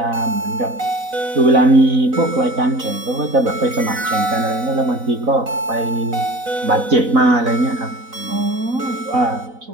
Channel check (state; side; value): late; left; 4.0 ms